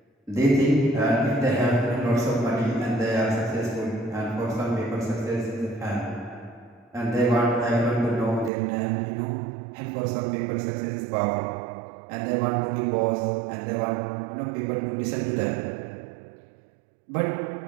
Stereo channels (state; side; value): drops out; left; at 8.5 s